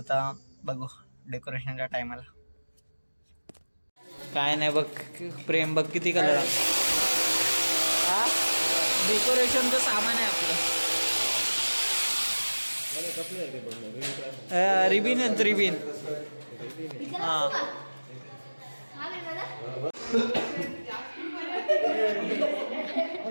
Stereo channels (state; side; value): inverted; both; correlation -1.00